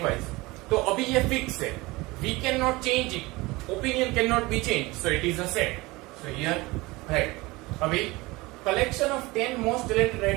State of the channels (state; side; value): quieter; left; 22.1 dB